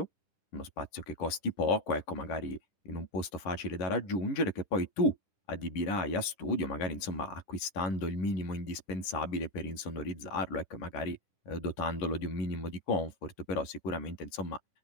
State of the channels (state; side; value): late; right; 10 ms